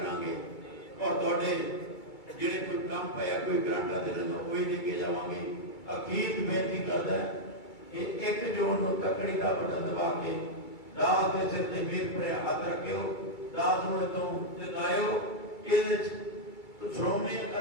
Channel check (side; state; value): right; late; 2.3 ms